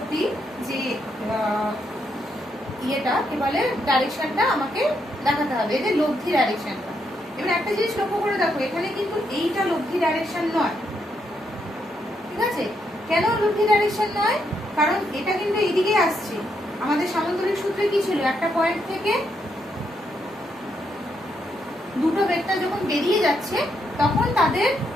যে ইয়েটা কি বলে ডাইরেকশনটা আমাকে দেখাতে হবে, এদের লব্ধি ডাইরেকশনটা। এবার একটা জিনিস লক্ষ্য করে দেখো, এখানে কিন্তু এইটা লব্ধি ডাইরেকশন নয়, ঠিক আছে। কেন লব্ধি ডাইরেকশন নয়, কারণ এটা কিন্তু এইদিকে আসছে, আমাদের সামান্তরিক সূত্রে কি ছিল, একটা পয়েন্ট থেকে দুটো ভেক্টর যখন বেরিয়ে যাচ্ছে তখন তাদের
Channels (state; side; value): normal; both; correlation 0.78